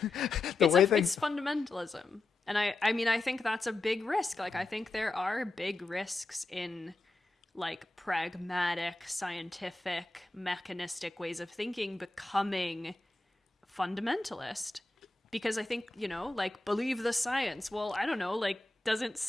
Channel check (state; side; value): quieter; right; 3.1 dB